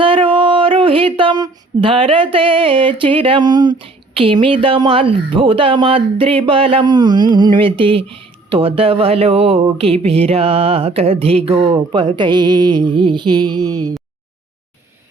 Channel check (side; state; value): left; quieter; 3.2 dB